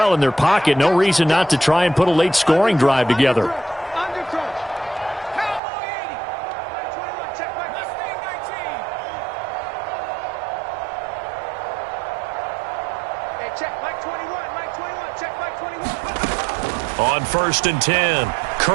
in their pocket, no reason not to try and put a late scoring drive together. On 1st and 10,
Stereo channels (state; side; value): drops out; left; at 5.6 s